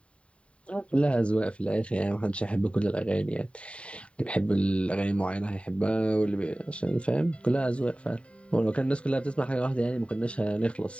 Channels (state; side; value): late; right; 0.061 ms